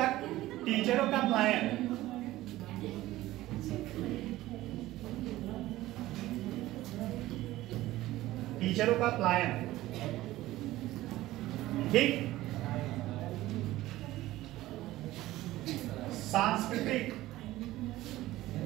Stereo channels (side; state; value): left; quieter; 16.4 dB